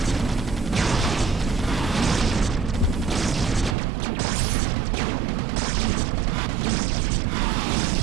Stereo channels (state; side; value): drops out; left; at 3.8 s